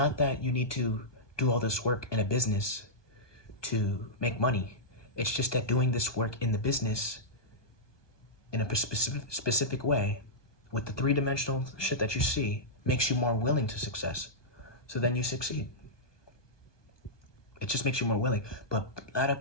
that you need to do all this work in a business to make money. It's just that doing this work in the business in a specific way with the three-dimensional shit that you see makes you more willing to success. So then you succeed. It just makes you more willing. But a lot of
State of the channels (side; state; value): right; late; 1.2 ms